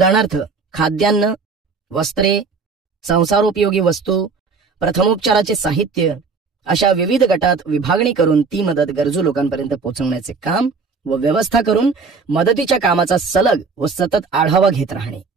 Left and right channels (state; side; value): quieter; left; 4.8 dB